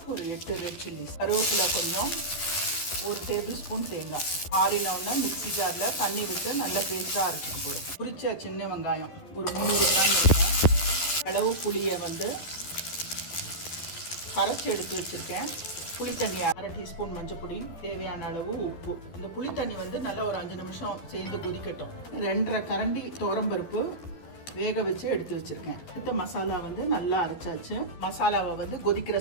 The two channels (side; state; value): right; late; 12 ms